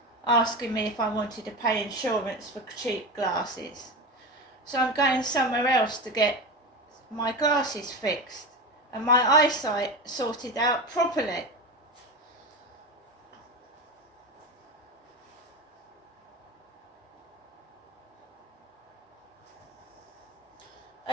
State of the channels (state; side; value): normal; both; correlation 0.22